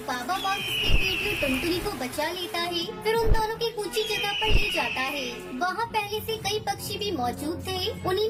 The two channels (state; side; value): identical; both; correlation 1.00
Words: बाबा बाघ उसकी बेटी और टुनटुनी को बचा लेता है। फिर उन दोनों की ऊंची जगह पर ले जाता है। वहाँ पहले से कई पक्षी भी मौजूद थे, उन्हीं